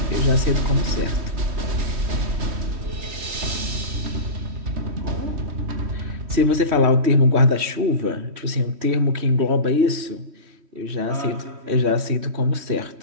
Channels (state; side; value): late; left; 3.1 ms